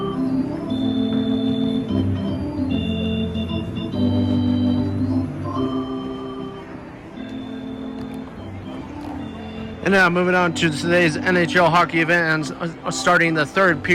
And now moving on to today's NHL hockey event and starting the third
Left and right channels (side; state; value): both; identical; correlation 1.00